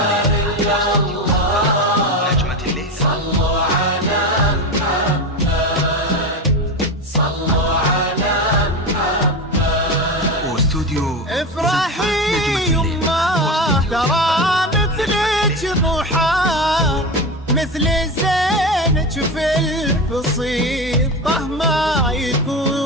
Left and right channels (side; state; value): both; normal; correlation 0.22